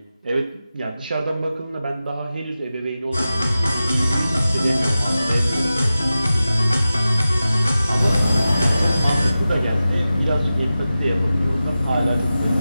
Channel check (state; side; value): inverted; both; correlation -0.94